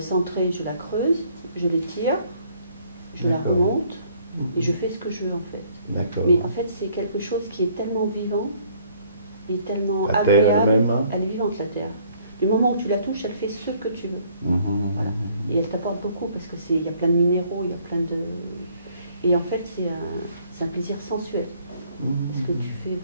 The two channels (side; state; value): both; inverted; correlation -0.62